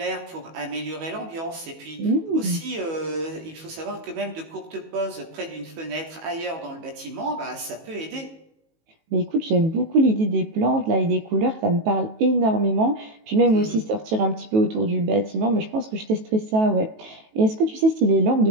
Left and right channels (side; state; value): left; late; 18 ms